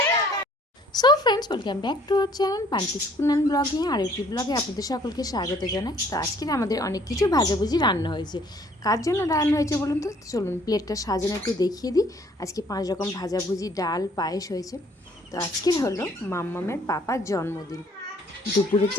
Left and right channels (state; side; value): normal; both; correlation 0.60